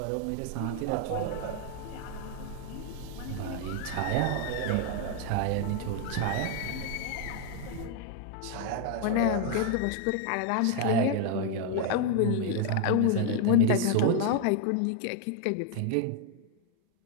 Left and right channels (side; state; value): both; different; correlation 0.00